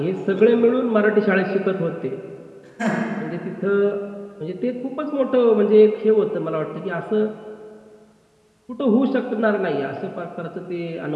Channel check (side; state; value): both; identical; correlation 1.00